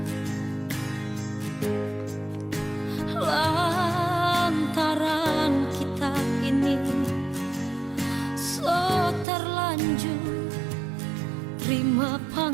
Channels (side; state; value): left; drops out; at 9.2 s